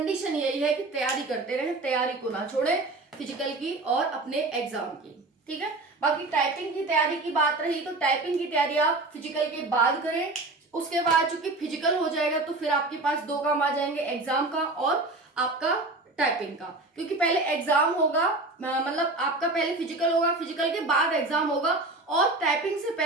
यही है कि तैयारी करते रहें, तैयारी को ना छोड़ें फिजिकल की और अपने एग्जाम की, ठीक है। बाकी टाइपिंग की तैयारी की बात रही, तो टाइपिंग की तैयारी आप फिजिकल के बाद करें। उसके बाद चूंकि फिजिकल हो जाएगा तो फिर आपके पास 2 काम आ जाएंगे, एग्जाम का और आपका टाइपिंग का। क्योंकि पहले एग्जाम होगा, मतलब आपका पहले फिजिकल होगा, फिजिकल के बाद एग्जाम होगा, और टाइपिंग से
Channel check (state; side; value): quieter; left; 3.0 dB